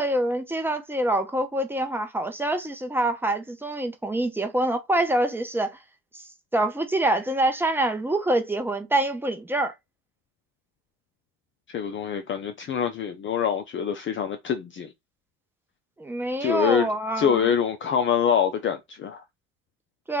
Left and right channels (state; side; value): normal; both; correlation 0.45